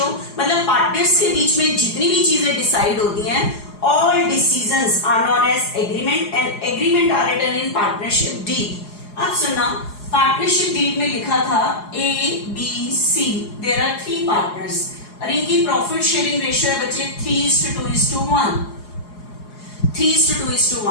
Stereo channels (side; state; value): right; late; 4.8 ms